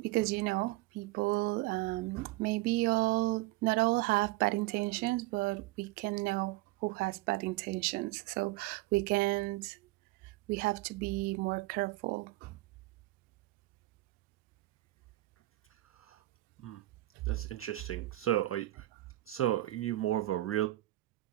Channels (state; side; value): quieter; left; 18.3 dB